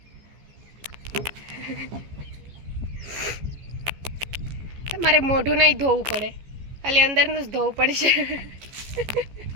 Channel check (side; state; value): left; late; 14 ms